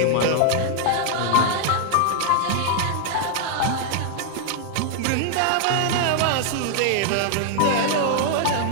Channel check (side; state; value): both; different; correlation 0.00